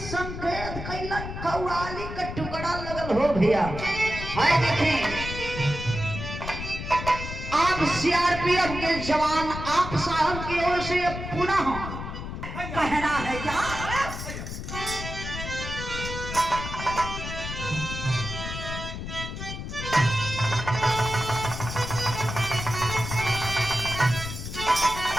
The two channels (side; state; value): left; noise; rumble, 7 dB below the sound